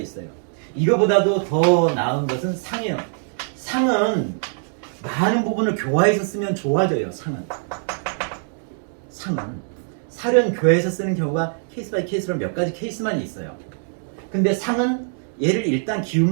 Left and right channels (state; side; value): silent; left; digital silence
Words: 이거보다도 더 나은 것은 상이에요. 상은 많은 부분을 교화해서 쓰면 좋아져요. 상은. 살은 교화해서 쓰는 경우가 케이스 바이 케이스로 몇 가지 케이스만 있어요. 근데 상은 얘를 일단